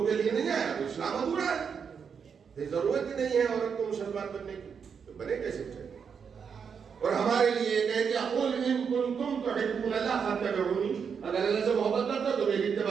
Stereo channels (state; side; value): quieter; left; 6.6 dB